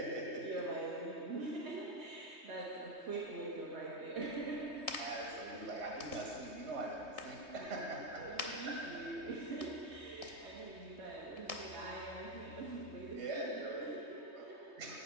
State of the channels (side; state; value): left; late; 3.2 ms